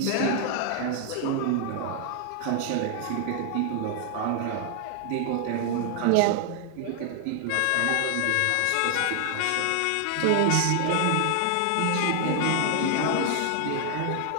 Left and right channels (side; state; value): both; different; correlation 0.00